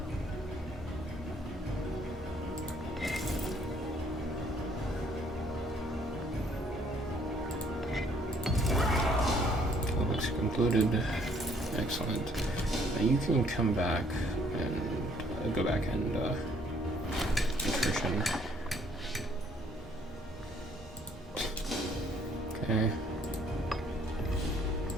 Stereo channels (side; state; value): both; normal; correlation 0.63